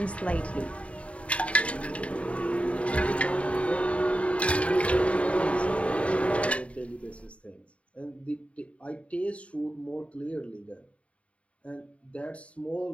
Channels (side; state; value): right; late; 0.063 ms